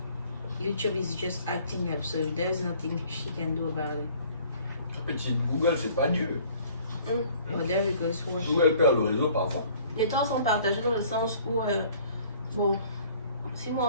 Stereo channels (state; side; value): inverted; both; correlation -0.55